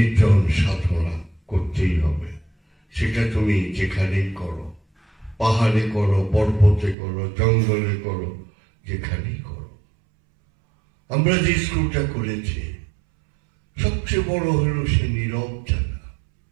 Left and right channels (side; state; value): left; drops out; at 7.0 s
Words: সাধনা করতেই হবে। সেটা তুমি যেখানেই করো, পাহাড়ে করো, পর্বতে করো, জঙ্গলে করো, যেখানেই করো। আমরা যে স্কুলটা করেছি, সবচেয়ে বড় হলো সে নীরব জায়গা।